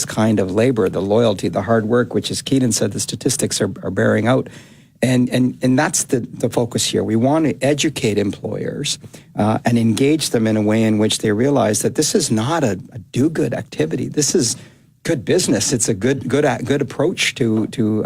kind of labor, the loyalty, the hard work, which, as Keenan said, the statistics are bearing out. And that's the focus here. We want to educate employers and engage them in a way in which they realize that this is not a do-good activity. This is good business. It's a good approach to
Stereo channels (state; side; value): identical; both; correlation 1.00